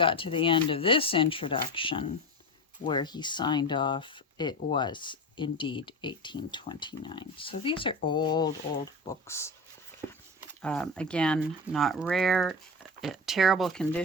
to the end of this introduction, where he signed off, it was indeed 1829. So these are old books. Again, not rare, terrible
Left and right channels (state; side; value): normal; both; correlation 0.24